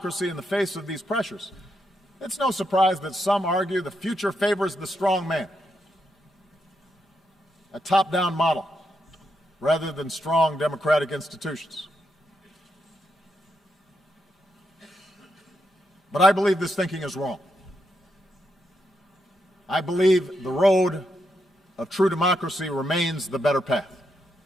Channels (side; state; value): both; normal; correlation 0.82